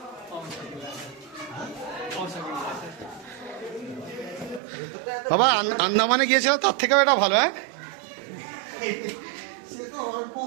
বাবা আন্দামানে গিয়েছিলাম, তার থেকেও এটা ভালো। হ্যাঁ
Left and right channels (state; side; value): drops out; left; at 4.6 s